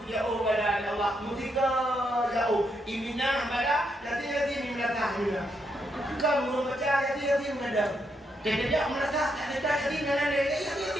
ubala ya Allah. Mutika jauh. Iminah bala, jadi ni belakang. Kalau baca jadi mengadap. Jadi dia melata, tak jadi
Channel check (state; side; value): normal; both; correlation 0.79